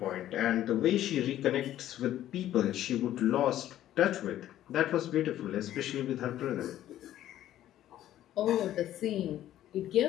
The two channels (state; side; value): quieter; right; 12.7 dB